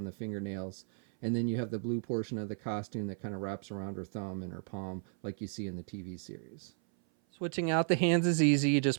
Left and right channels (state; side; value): silent; left; 55 dB below the other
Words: the fingernails. And then you have the blue portion of the costume that kind of wraps around her thumb and her palm like you see in the TV series. Switching out the hands is easy. You